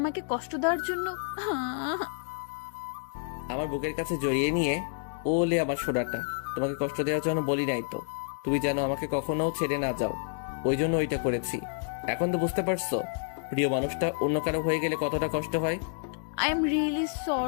কষ্ট দেওয়ার জন্য? আমার বুকের কাছে জড়িয়ে নিয়ে ওলে আমার সোনাটা, তোমাকে কষ্ট দেওয়ার জন্য বলি নাই তো। তুমি যেন আমাকে কখনো ছেড়ে না যাও, ওই জন্য ওইটা করেছি। এখন তো বুঝতে পারছো প্রিয় মানুষটা অন্য কারো হয়ে গেলে কতটা কষ্ট হয়। I am really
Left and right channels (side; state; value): right; silent; digital silence